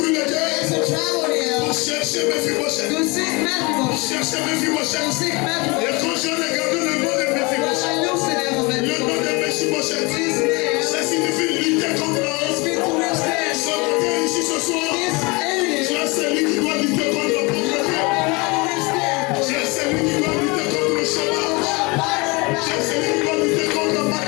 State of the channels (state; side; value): quieter; right; 26.7 dB